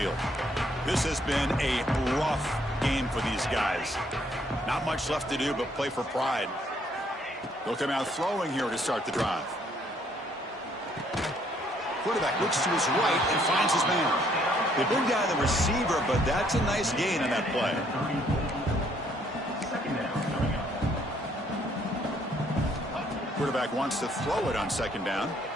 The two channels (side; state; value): both; normal; correlation 0.67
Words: This has been a rough game for these guys. Not much left to do but play for pride. They'll come out throwing here to start the drive. Quarterback looks to his right and finds his man. They bring down the receiver, but that's a nice gain on that play. Quarterback wants to throw it on second down.